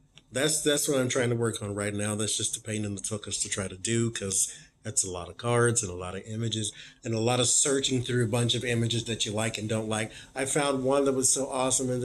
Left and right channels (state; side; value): identical; both; correlation 1.00